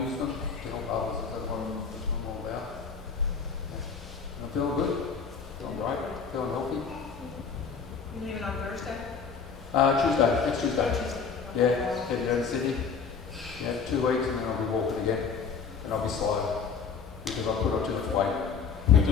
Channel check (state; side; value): quieter; right; 5.8 dB